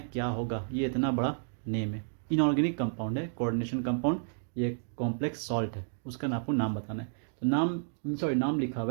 क्या होगा। ये इतना बड़ा नेम है, इनऑर्गेनिक कंपाउंड है, कोऑर्डिनेशन कंपाउंड, ये कॉम्प्लेक्स सॉल्ट है, उसका आपको नाम बताना है। तो नाम लिखा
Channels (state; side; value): silent; left; digital silence